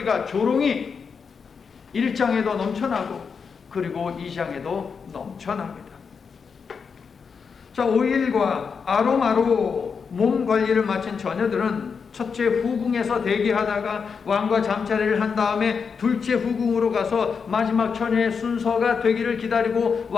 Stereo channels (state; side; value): quieter; right; 5.8 dB